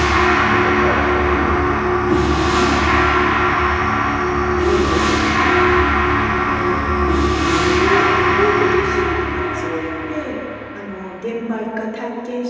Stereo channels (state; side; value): identical; both; correlation 1.00